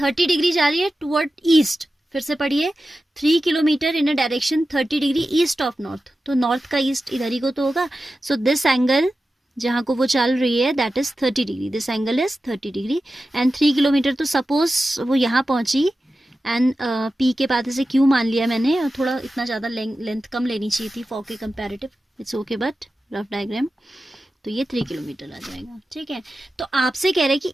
डिग्री जा रही है टुवर्ड ईस्ट. फिर से पढ़िए, 3 kilometre in direction 30 degree east of north. तो नॉर्थ का ईस्ट इधर ही को तो होगा. सो दिस एंगल जहां को वो चल रही है that is 30 degree. This angle is 30 degree and 3 kilometre. तो सपोज वो यहाँ पहुंची एंड पी के बाद से क्यू मान लिया मैंने, और थोड़ा इतना ज़्यादा लेंथ कम लेनी चाहिए थी फॉर के comparative. It's okay, but rough diagram. तो ये 3 किलोमीटर आ जाएगा. ठीक है, तो आपसे कह रहे हैं कि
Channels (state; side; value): normal; both; correlation 0.93